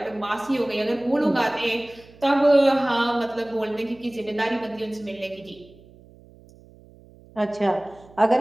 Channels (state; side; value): noise; right; hum, 24 dB below the sound